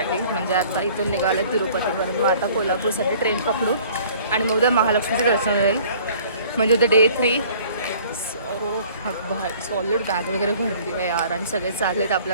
म्हणजे आता इथून निघालं आहे तिरुपतीपर्यंत. मग आता कोल्हापूरसाठी ट्रेन पकडू आणि मग उद्या महालक्ष्मीचं दर्शन होईल. म्हणजे उद्या डे 3. सॉलिड बॅग वगैरे भरली आहे यार आणि सगळे चाललेत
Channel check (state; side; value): inverted; both; correlation -0.52